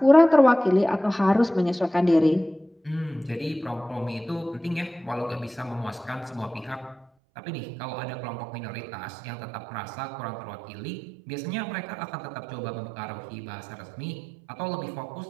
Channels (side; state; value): left; drops out; at 7.1 s